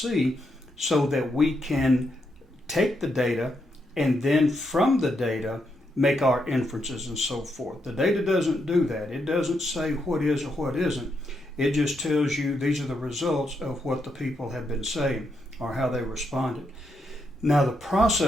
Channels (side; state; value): both; normal; correlation 0.80